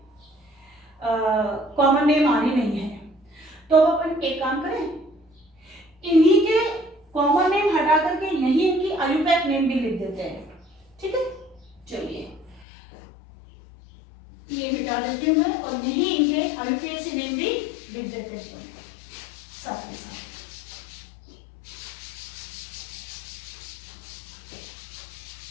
कॉमन नेम आने नहीं है। तो अब अपन एक काम करें, इन्हीं के कॉमन नेम हटा करके यही इनकी आयुपैक नेम भी लिख देते हैं, ठीक है। चलिए ये मिटा देती हूँ मैं, और यही इनके आयुपीएसी नेम भी लिख देते हैं साथ में साथ।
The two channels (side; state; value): right; drops out; at 12.7 s